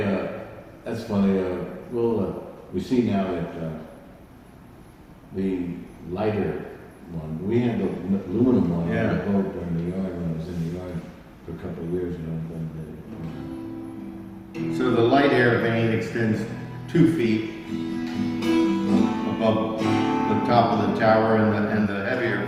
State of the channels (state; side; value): identical; both; correlation 1.00